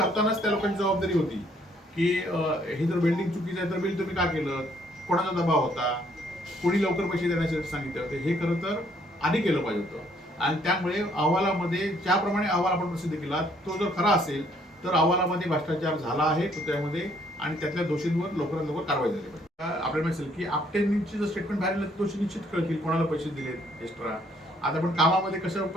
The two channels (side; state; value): both; normal; correlation 0.66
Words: त्या लोकांची जबाबदारी होती की हे जर वेल्डिंग चुकीचं आहे तर बिल तुम्ही का केलं, कोणाचा दबाव होता, कोणी लवकर पैसे देण्यासाठी सांगितले होते, हे खरं तर आधी केलं पाहिजे होतं. आणि त्यामुळे अहवालामध्ये ज्याप्रमाणे अहवाल आपण प्रसिद्ध केला तो जर खरा असेल तर अहवालामध्ये भ्रष्टाचार झाला आहे पुतळ्यामध्ये आणि त्यातल्या दोषींवर लवकरात लवकर कारवाई झाली पाहिजे. आपल्याला माहिती असेल की आपटेंची जर स्टेटमेंट बाहेर आलं दोषी निश्चित कळतील कोणाला पैसे दिलेत एक्स्ट्रा. आता आपण कामामध्ये कसं